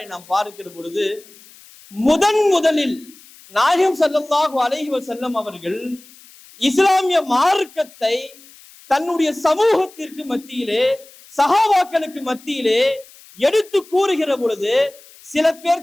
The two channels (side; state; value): left; noise; hiss, 24 dB below the sound